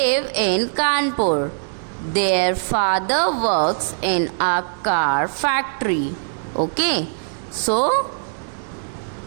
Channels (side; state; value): left; silent; digital silence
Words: in Kanpur. Their father works in a car factory. Okay. So